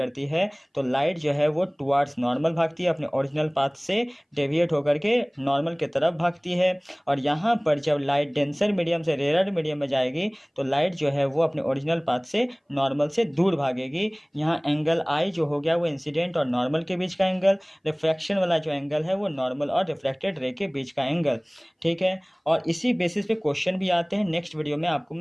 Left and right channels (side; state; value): both; identical; correlation 1.00